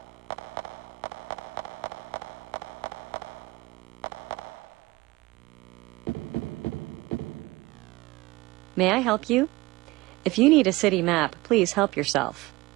May I help you? If you need a city map, please help yourself.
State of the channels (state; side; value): quieter; left; 20.9 dB